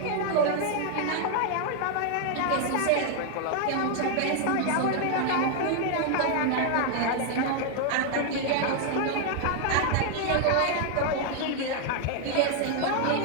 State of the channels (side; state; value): both; different; correlation 0.00